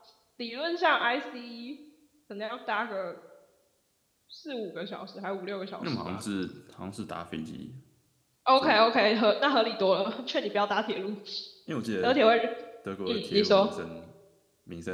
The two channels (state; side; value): identical; both; correlation 1.00